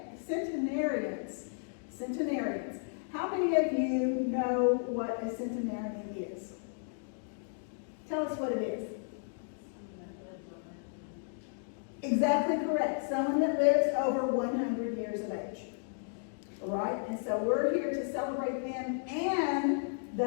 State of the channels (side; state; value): right; silent; digital silence